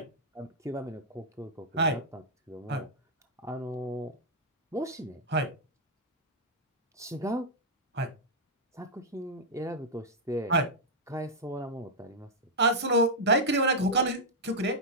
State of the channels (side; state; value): both; normal; correlation -0.06